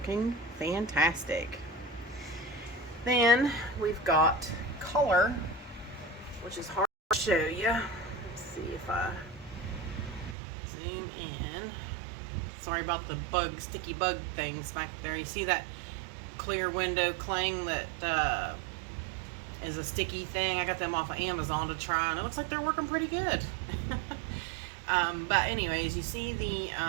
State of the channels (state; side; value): drops out; left; at 10.4 s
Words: fantastic. Then we've got color, which is hard to show you. Let's see if I zoom in. Sorry about the sticky bug things back there. You see that clear window cling that is a sticky thing? I got them off of Amazon to try, and it looks like they're working pretty good. But anyways, you see the